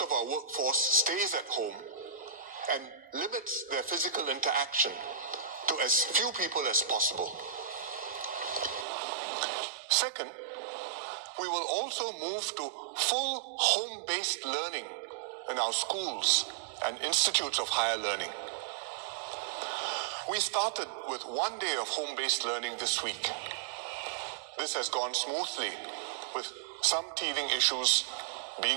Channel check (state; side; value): drops out; left; at 8.8 s